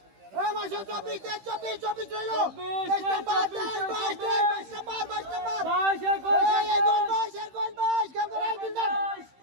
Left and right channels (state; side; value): late; left; 15 ms